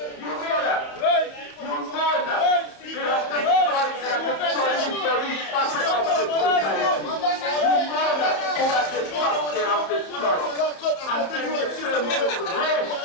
You know that. You know that. They have destroyed the very fabric of the society. You know that. Who at the top they have destroyed. And then they turn to race.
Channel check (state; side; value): late; right; 30 ms